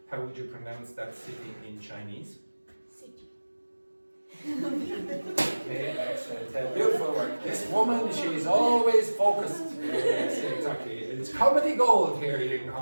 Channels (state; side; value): inverted; both; correlation -1.00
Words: How would you pronounce that city in Chinese? City. Okay, excellent. Beautiful work. This woman, she's always focused. Yes, exactly. It's comedy gold here, Ying